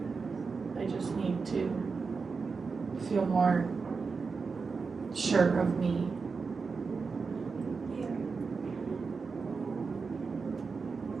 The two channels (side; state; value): left; quieter; 4.8 dB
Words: I just need to feel more sure of me. Yeah.